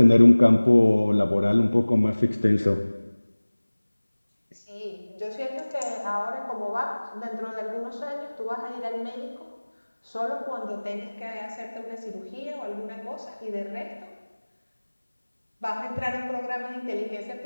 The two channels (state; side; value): inverted; both; correlation -1.00